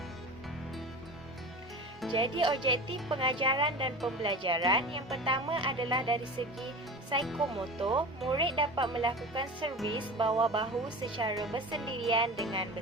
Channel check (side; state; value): both; normal; correlation 0.31